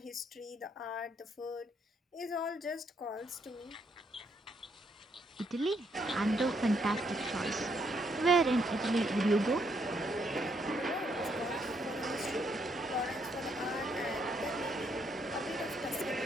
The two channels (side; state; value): both; normal; correlation 0.74